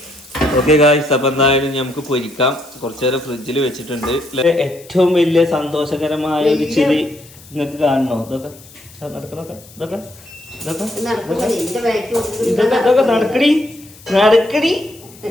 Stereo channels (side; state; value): left; noise; hiss, 22 dB below the sound